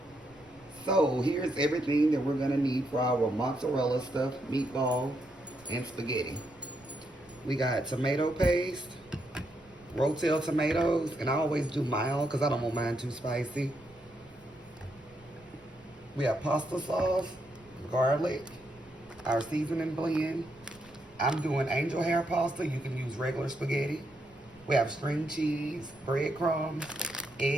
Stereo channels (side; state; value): right; noise; rumble, 28 dB below the sound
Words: So here's everything that we're gonna need for our mozzarella stuffed meatball and spaghetti. We got tomato paste, rotel tomatoes, and I always do mild because I don't want mine too spicy. We have pasta sauce, garlic, our seasoning blend. I'm doing angel hair pasta. You can use regular spaghetti. We have string cheese, breadcrumbs,